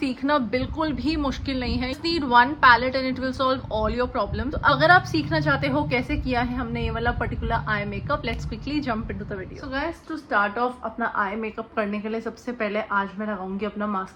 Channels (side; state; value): both; identical; correlation 1.00